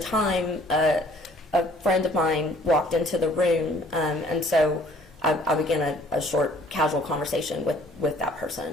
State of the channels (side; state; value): both; normal; correlation 0.57